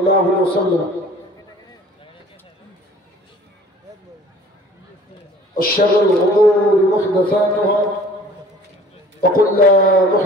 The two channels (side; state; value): both; normal; correlation 0.49